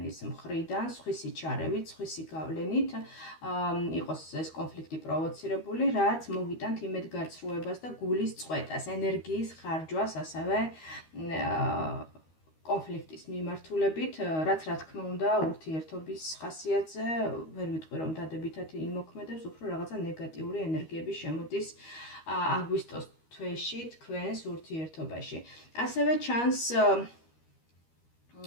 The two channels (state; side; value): late; right; 13 ms